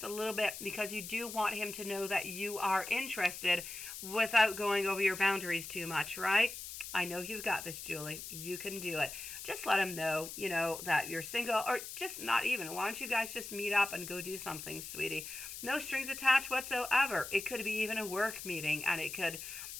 a little bit, because you do want him to know that you are interested without going over your boundaries too much, right? I know you've got this, Julie. You can do it. Just let him know, you know, that you're single, or just not even. Why don't you guys just meet up and go do something, sweetie? No strings attached whatsoever. It could be even a work meeting, and it could,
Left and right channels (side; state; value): left; noise; hiss, 9 dB below the sound